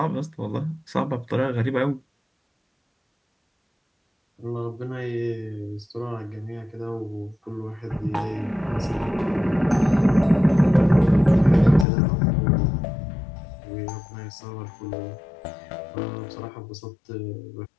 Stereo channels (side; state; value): right; drops out; at 11.9 s